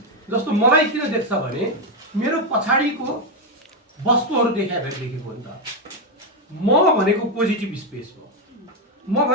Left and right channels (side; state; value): both; normal; correlation 0.05